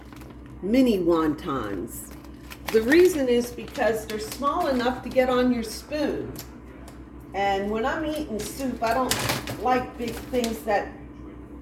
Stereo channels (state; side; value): identical; both; correlation 1.00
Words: mini wontons. The reason is because they're small enough to get on your spoon. And when I'm eating soup, I don't like big things that